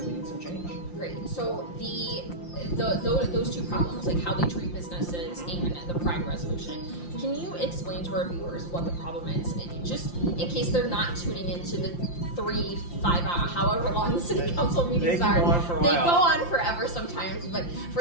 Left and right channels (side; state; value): right; late; 5.8 ms